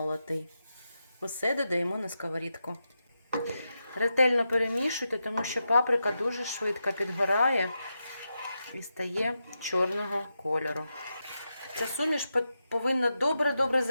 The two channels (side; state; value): both; inverted; correlation -0.88